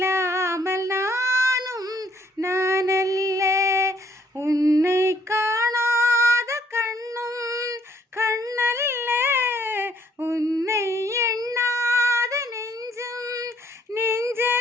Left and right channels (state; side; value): normal; both; correlation 0.66